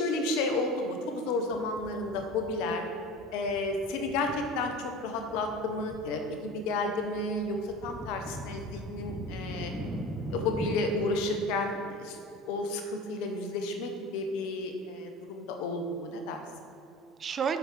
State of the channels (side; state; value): both; normal; correlation 0.34